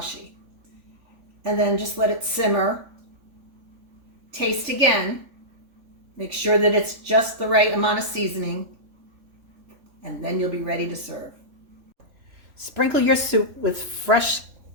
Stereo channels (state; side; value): late; left; 3.4 ms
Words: And then just let it simmer. Taste again. Make sure that it's just the right amount of seasoning, and then you'll be ready to serve. Sprinkle your soup with fresh